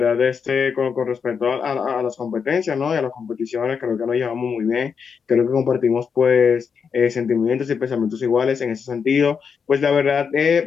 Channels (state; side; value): quieter; right; 6.2 dB